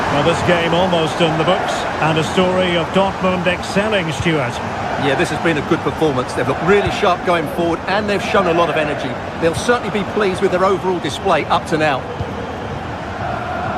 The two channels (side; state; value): both; identical; correlation 1.00